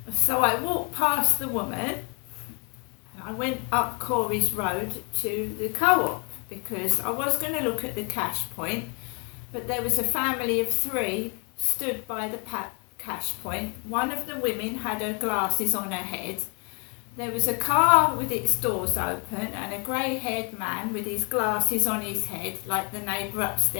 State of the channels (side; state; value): right; quieter; 36.0 dB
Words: So I walked past the woman and I went up Corey's Road to the co-op because I was going to look at the cash point, but there was a family of 3 stood by the cash point. One of the women had her glasses on her head. There was a car with its doors open and a grey-haired man with his glasses on his head, like the neighbour